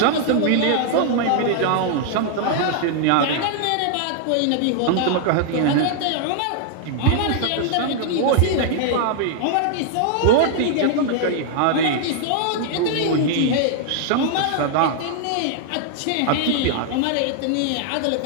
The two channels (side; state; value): both; different; correlation 0.00